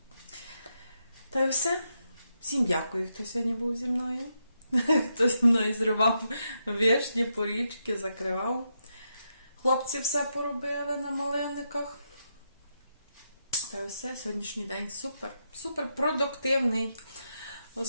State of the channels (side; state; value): both; inverted; correlation -0.83